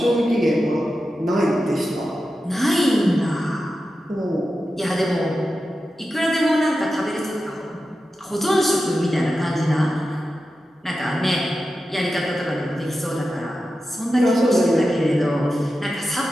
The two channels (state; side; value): normal; both; correlation 0.91